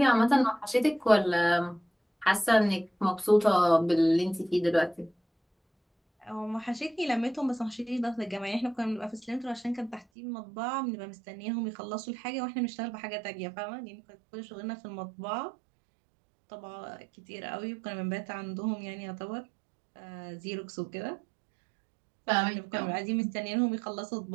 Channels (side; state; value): left; drops out; at 10.1 s